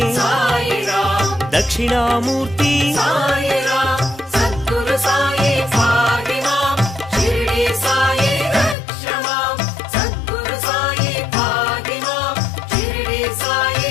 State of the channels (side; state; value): right; drops out; at 8.8 s